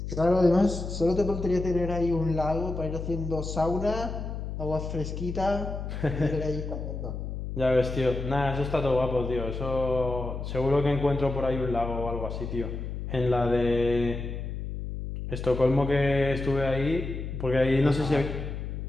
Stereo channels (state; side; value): noise; left; hum, 6 dB below the sound